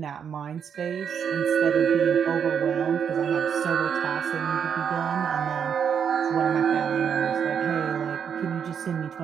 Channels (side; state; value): left; quieter; 7.6 dB